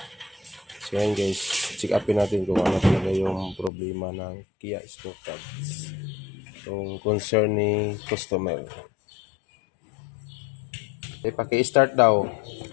So yan guys, check upin natin kung ano talaga yung problema ng Kia Sportage. Yung concern ni customer. Paki-start daw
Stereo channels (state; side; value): drops out; right; at 3.7 s